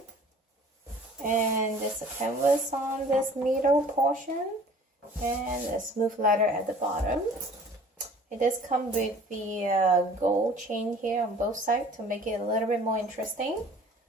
and there's a canvas on this middle portion, and a smooth leather at the bottom. It does come with the gold chain here on both sides to make it a little bit more interesting.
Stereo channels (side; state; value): both; normal; correlation 0.49